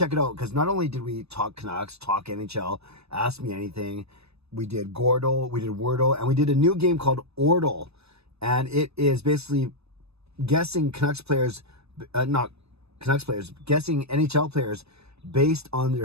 it out, because not only did we talk Canucks, talk NHL, ask me anything, we did Gordle, we did Wordle, and we did a new game called Ordle. And it is basically guessing guessing NHL players based on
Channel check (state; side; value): late; left; 0.79 ms